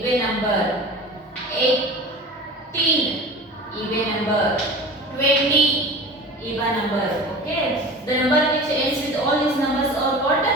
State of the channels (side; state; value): both; normal; correlation 0.36